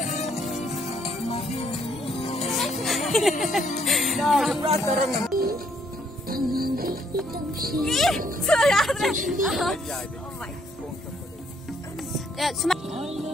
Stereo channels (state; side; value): normal; both; correlation 0.68